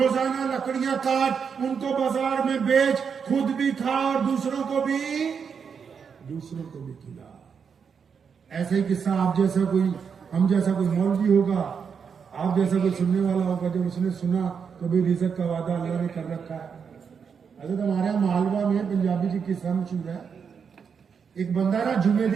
لکڑیاں کاٹ، ان کو بازار میں بیچ، خود بھی کھا اور دوسروں کو بھی کھلا۔ ایسے ہی قصہ آپ جیسا کوئی، ہم جیسا کوئی مولوی ہوگا، آپ جیسا کوئی سننے والا ہوگا، جب اس نے سنا تو بھی رزق کا وعدہ اللہ نے کر رکھا ہے۔ حضرت ہمارے یہاں مالوا میں پنجابی کی قصہ مشہور ہے، ایک بندہ نا جمعے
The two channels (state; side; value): quieter; left; 6.5 dB